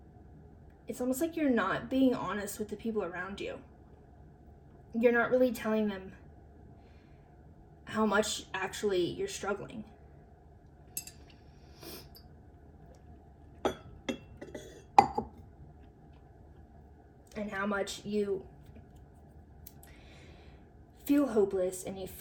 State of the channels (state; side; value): identical; both; correlation 1.00